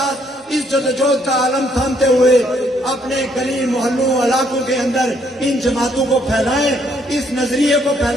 اس جدوجہد کا عالم تھامتے ہوئے اپنے گلی محلوں علاقوں کے اندر ان جماعتوں کو پھیلائیں، اس نظریے کو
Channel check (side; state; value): both; normal; correlation 0.69